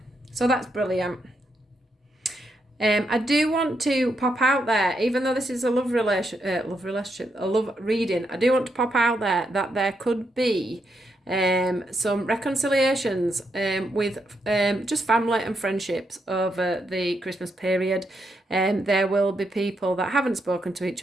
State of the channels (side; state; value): both; normal; correlation 0.80